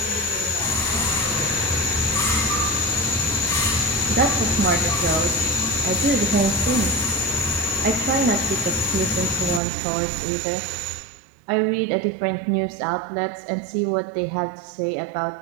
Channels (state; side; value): drops out; left; at 9.6 s